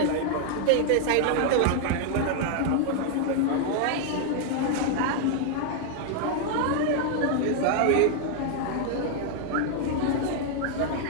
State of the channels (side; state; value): both; different; correlation 0.00